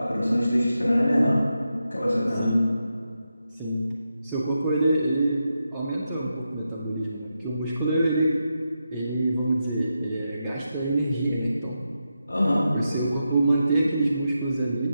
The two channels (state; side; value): inverted; both; correlation -0.87